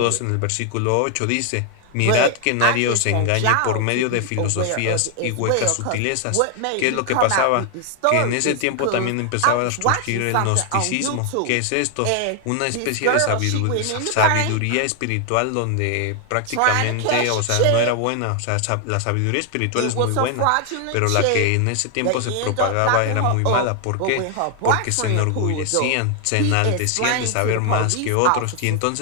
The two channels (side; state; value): both; different; correlation 0.00